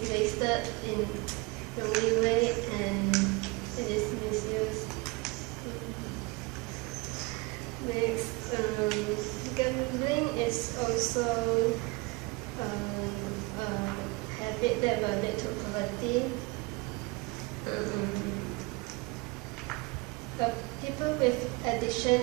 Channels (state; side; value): quieter; left; 25.3 dB